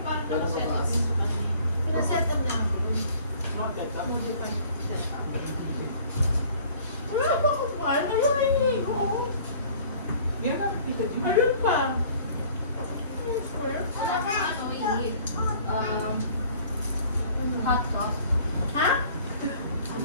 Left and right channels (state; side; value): inverted; both; correlation -0.52